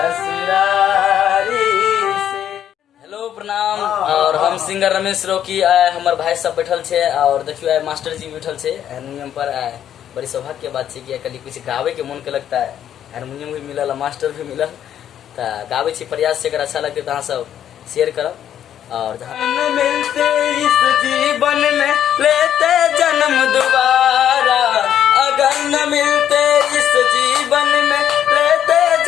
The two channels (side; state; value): right; quieter; 10.1 dB